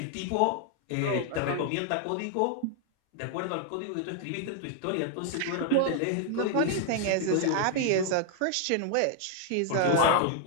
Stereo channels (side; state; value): both; different; correlation 0.00